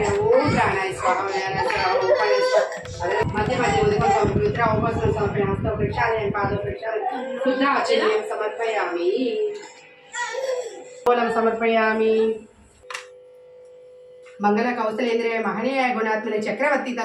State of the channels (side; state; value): both; identical; correlation 1.00